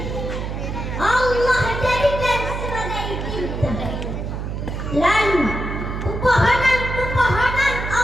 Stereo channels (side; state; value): right; noise; hum, 5 dB below the sound